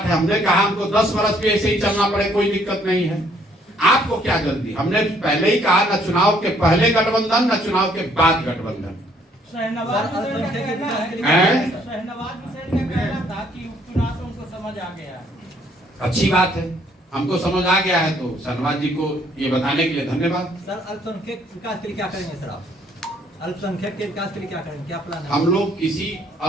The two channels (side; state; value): both; normal; correlation 0.65